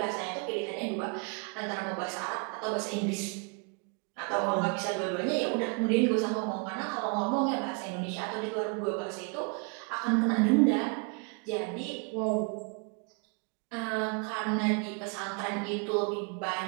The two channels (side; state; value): left; quieter; 34.3 dB